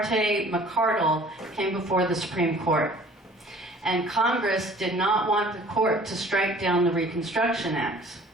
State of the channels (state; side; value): normal; both; correlation 0.51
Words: McCardle came before the Supreme Court. And Congress did not want the court to strike down the Reconstruction Acts.